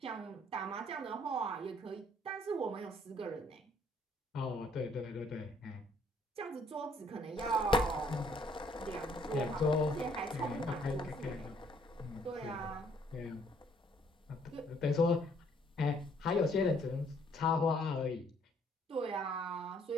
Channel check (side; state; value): both; normal; correlation 0.64